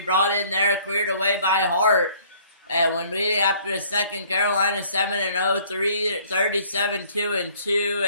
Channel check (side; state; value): both; inverted; correlation -0.57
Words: in there, cleared away by Hart. And when we after the second, Carolina 7-0, 37-2-2,